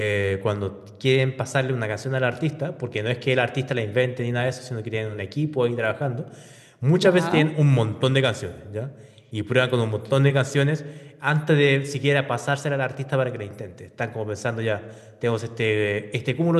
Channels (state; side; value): identical; both; correlation 1.00